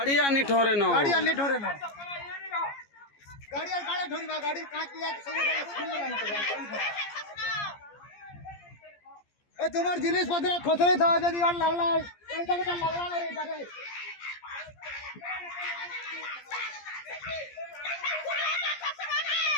आनी ठोरे न गाड़ी आनी ठोरे न गाड़ी और गाड़ी ठोरी बा गाड़ी काट लिया सब ए तुम्हार जिनिस पत्र खोसरे था यदि और लगला ऐसा के लगला रे इधर लागला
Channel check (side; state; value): right; late; 14 ms